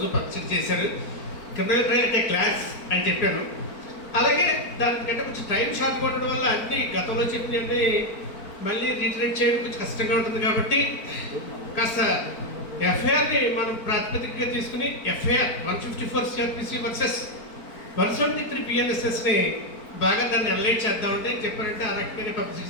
పరిచయం చేశారు. క్రిమినల్ అయితే క్లాస్ అని చెప్పాను. అలాగే దానికంటే కొంచెం టైం షార్ట్ ఉండడం వల్ల అన్ని గతంలో చెప్పినవి మళ్ళీ రీటరేట్ చేయడం కొంచెం కష్టంగా ఉంటుంది. కాబట్టి కాస్త ఎఫ్ఐఆర్ని మనం ప్రాతిపదికగా తీసుకుని ఎఫ్ఐఆర్ 154 CRPC వర్సెస్ 173 PNSSని బాగా దాన్ని అనలైజ్ చేద్దామంటే చెప్పారంటే ఆ రకంగానే పబ్లిసిటీ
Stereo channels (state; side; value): late; right; 4.4 ms